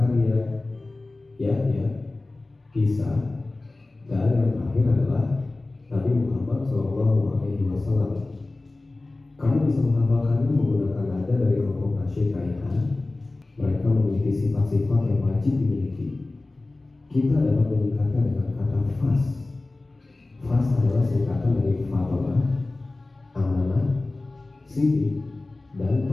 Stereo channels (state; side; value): quieter; right; 3.1 dB